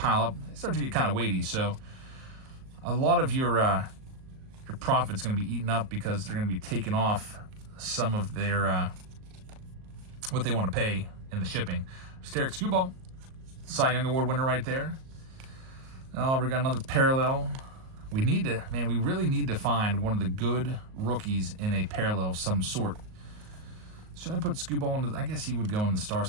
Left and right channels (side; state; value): left; late; 38 ms